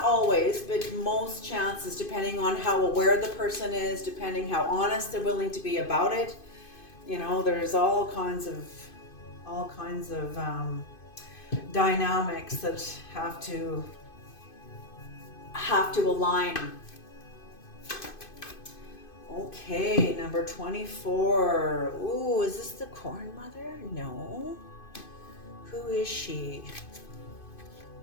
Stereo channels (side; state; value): right; late; 2.5 ms